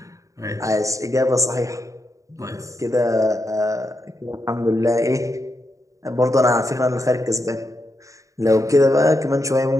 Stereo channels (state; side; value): late; left; 0.16 ms